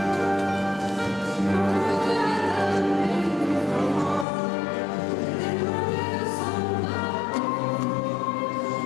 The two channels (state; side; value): drops out; right; at 4.2 s